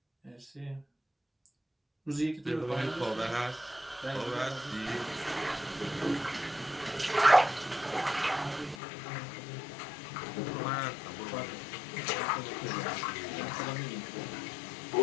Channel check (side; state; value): right; drops out; at 8.8 s